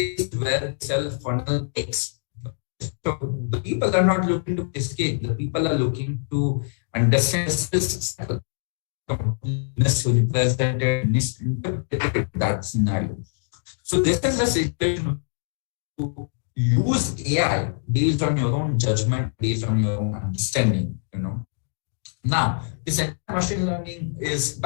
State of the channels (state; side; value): silent; right; digital silence